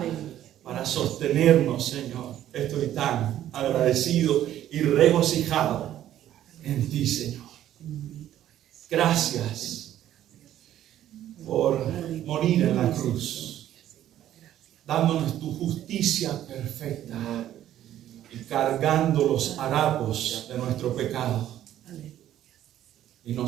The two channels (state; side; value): quieter; left; 12.1 dB